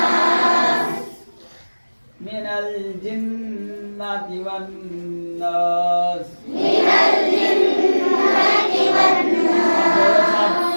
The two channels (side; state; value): both; inverted; correlation -1.00